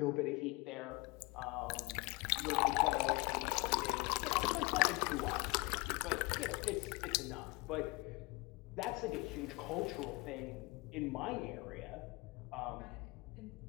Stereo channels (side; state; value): right; quieter; 25.5 dB